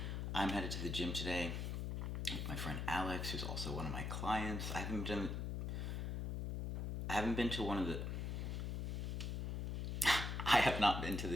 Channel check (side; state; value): left; noise; hum, 2 dB below the sound